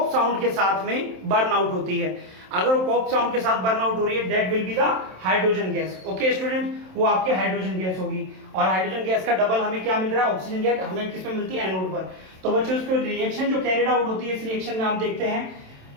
साउंड के साथ में बर्न आउट होती है। अगर वो पॉप साउंड के साथ बर्न आउट हो रही है, that will be the hydrogen gas. Okay student, वो आपके हाइड्रोजन गैस होगी, और हाइड्रोजन गैस का डबल हमें क्या मिल रहा है, ऑक्सीजन गैस हमें किसमें मिलती है, एनोड पर। तो बच्चों इसको रिएक्शन जो कैरिड आउट होती है, इस रिएक्शन में आप देखते हैं,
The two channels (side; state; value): left; late; 27 ms